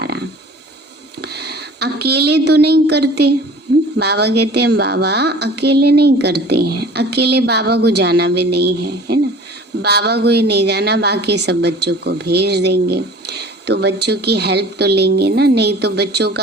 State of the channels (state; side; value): normal; both; correlation 0.45